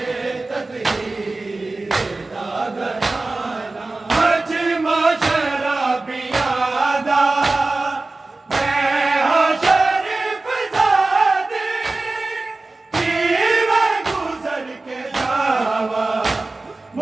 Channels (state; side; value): quieter; left; 3.2 dB